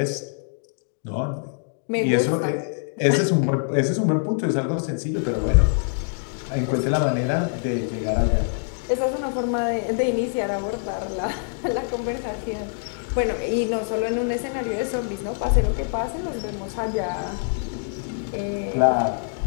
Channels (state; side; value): silent; right; digital silence